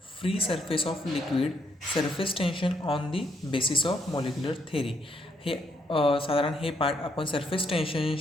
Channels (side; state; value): both; normal; correlation 0.75